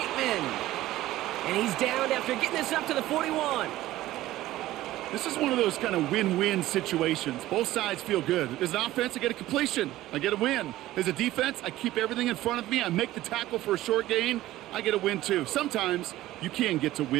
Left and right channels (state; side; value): quieter; left; 15.6 dB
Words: And he's down after getting this up to the 41. This is one of those kind of win-win situations. Both sides feel good. As an offense, I get a completion. I get a win. As a defense, I keep everything in front of me. I make the tackle for a short gain. I get a win, too. Sometimes you can get to